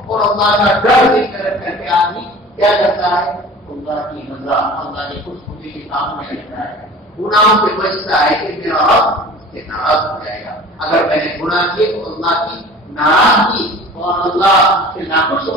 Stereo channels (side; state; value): both; normal; correlation 0.42